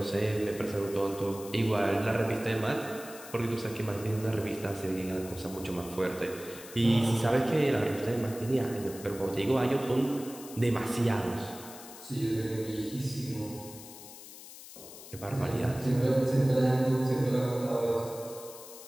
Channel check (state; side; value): noise; left; hiss, 15 dB below the sound